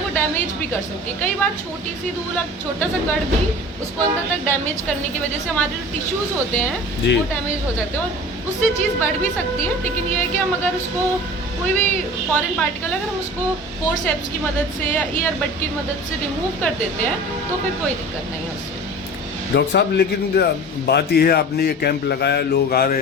को डैमेज भी कर सकती है। कई बार छोटी सी धूल, छोटा सा कण भी उसको अंदर तक डैमेज करने की वजह से हमारे जो टिश्यूज़ होते हैं वो डैमेज हो जाते हैं और उससे चीज़ बढ़ भी सकती है। लेकिन ये है कि हम अगर उसको, कोई भी फॉरेन पार्टिकल अगर हम उसको फोर्सेप्स की मदद से या ईयरबड की मदद से रिमूव कर देते हैं तो फिर कोई दिक्कत नहीं है उससे। डॉक्टर साहब, लेकिन बात यह है, आपने ये कैंप लगाया, लोग आ रहे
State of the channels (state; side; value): normal; both; correlation 0.39